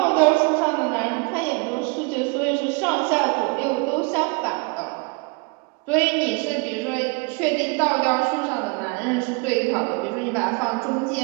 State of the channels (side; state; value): left; quieter; 30.6 dB